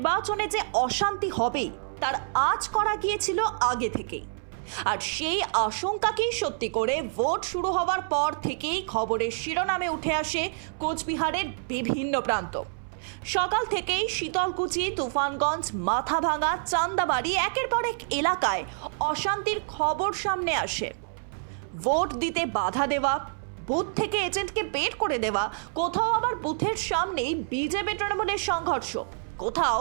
যে অশান্তি হবে তার আঁচ করা গিয়েছিল আগে থেকেই, আর সেই আশঙ্কাকেই সত্যি করে ভোট শুরু হওয়ার পর থেকেই খবরের শিরোনামে উঠে আসে কোচবিহারের বিভিন্ন প্রান্ত। সকাল থেকেই শীতলকুচি, তুফানগঞ্জ, মাথাভাঙা, চান্দাবাড়ি একের পর এক এলাকায় অশান্তির খবর সামনে আসে। ভোট দিতে বাধা দেওয়া, বুথ থেকে এজেন্টকে বের করে দেওয়া, কোথাও আবার বুথের সামনেই বিজেপি তৃণমূলের সংঘর্ষ, কোথাও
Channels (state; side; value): silent; left; 60 dB below the other